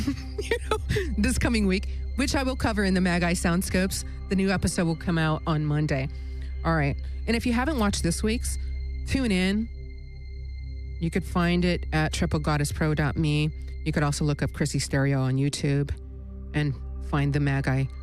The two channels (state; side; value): identical; both; correlation 1.00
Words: this coming week, which I will cover in the Magi Soundscopes. The new episode will come out on Monday. All right. And if you haven't watched this week's, tune in. You could find it at triplegoddesspro.me. You could also look up Chrissy Stereo on YouTube and find the Magi